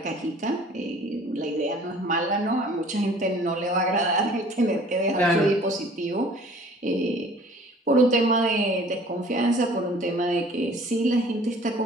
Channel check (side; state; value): both; normal; correlation 0.51